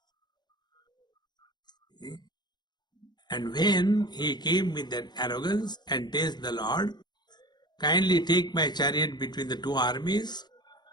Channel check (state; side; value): late; right; 0.21 ms